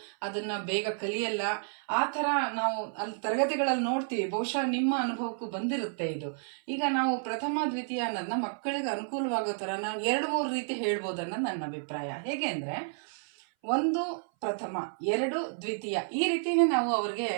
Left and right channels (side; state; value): left; silent; 57 dB below the other